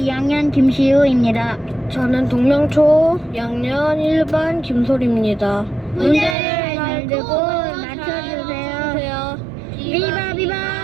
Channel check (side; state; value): left; drops out; at 6.4 s